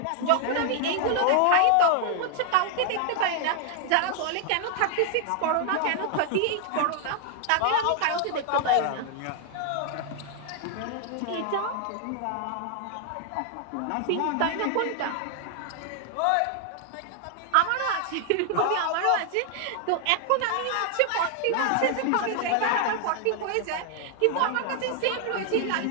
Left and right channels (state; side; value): different; both; correlation 0.00